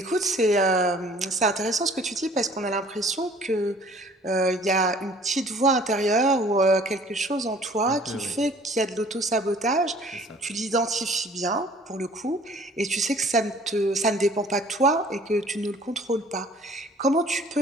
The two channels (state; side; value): normal; both; correlation 0.53